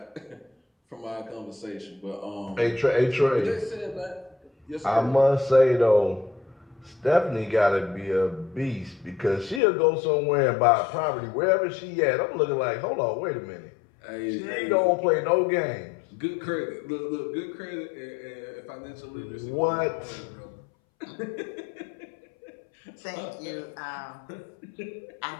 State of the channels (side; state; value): right; drops out; at 9.6 s